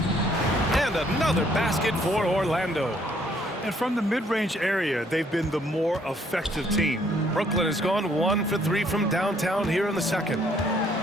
And another basket for Orlando. And from the mid-range area, they've been the more effective team. Brooklyn has gone 1 for 3 from downtown here in the second.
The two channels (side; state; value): both; normal; correlation 0.65